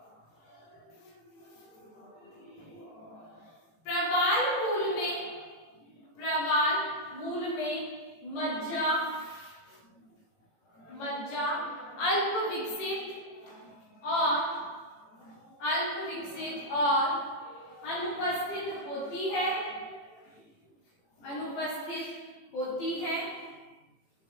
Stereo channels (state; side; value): late; right; 18 ms